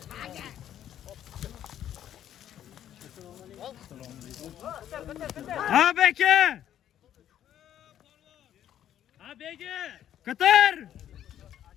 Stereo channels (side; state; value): right; quieter; 10.9 dB